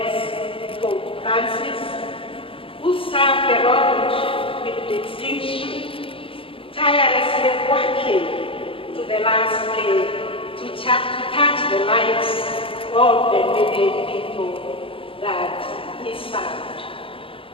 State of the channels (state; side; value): late; right; 0.26 ms